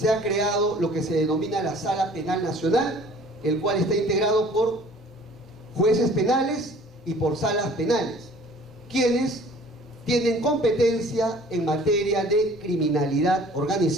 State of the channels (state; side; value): normal; both; correlation 0.51